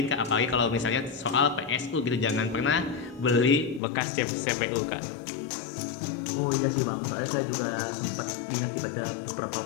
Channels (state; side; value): drops out; right; at 3.8 s